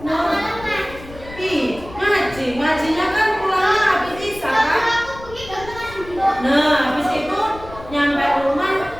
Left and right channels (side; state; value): left; noise; rumble, 16 dB below the sound